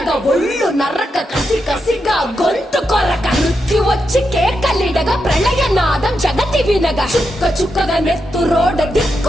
ఒళ్ళు నరక కసి కసిగా గొంతు కొరక మృత్యు వచ్చి కేకలిడగా ప్రళయనాదం జగతి వినగా చుక్క చుక్కగా నెత్తురోడ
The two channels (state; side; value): normal; both; correlation 0.85